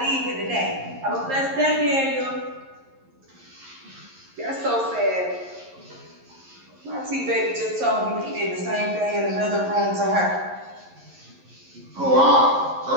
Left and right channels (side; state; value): left; late; 11 ms